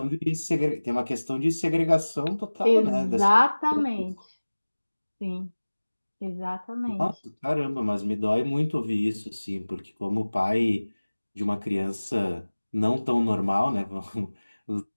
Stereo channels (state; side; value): inverted; both; correlation -1.00